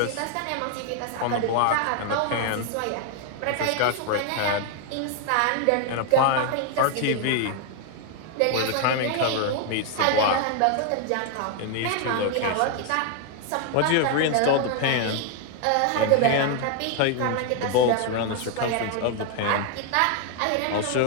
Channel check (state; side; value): different; both; correlation 0.01